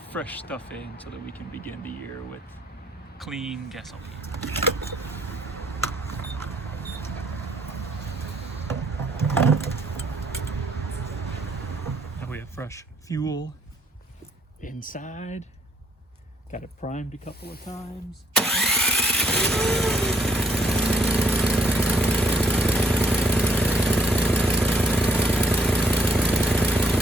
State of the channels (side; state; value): both; normal; correlation 0.67